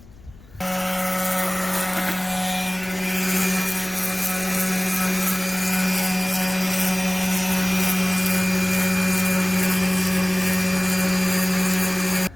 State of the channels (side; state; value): left; noise; rumble, 22 dB below the sound